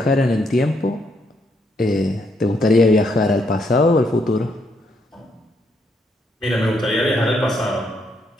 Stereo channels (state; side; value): normal; both; correlation 0.75